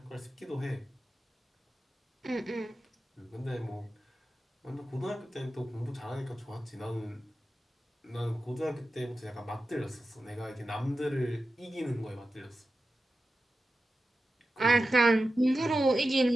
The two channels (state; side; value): normal; both; correlation 0.92